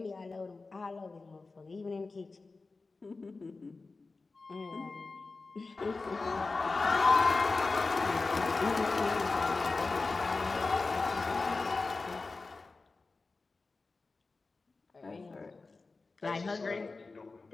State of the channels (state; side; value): quieter; right; 3.8 dB